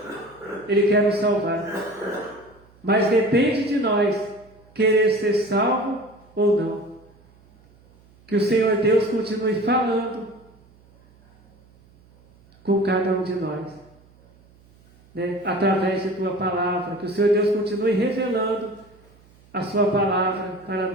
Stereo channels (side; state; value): right; noise; hum, 29 dB below the sound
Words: nos salvar. Mas depende de nós querer ser salvo ou não. Que o Senhor Deus continue falando com cada um de nós, né? Através de Tua palavra. Que o Senhor Deus continue revelando a Sua palavra para